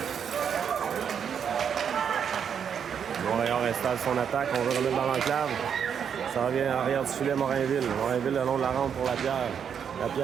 Montréal installe son attaque. On veut remettre dans l'enclave. Ça revient en arrière du filet Morinville. Morinville le long de la rampe pour Lapierre.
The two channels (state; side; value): quieter; left; 7.7 dB